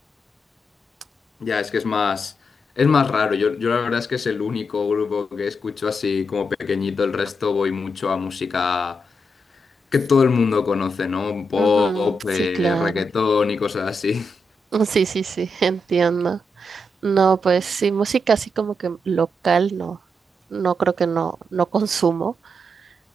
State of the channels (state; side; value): normal; both; correlation 0.83